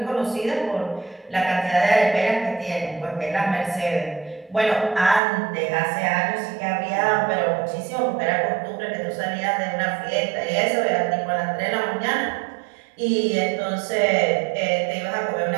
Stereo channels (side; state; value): left; drops out; at 5.2 s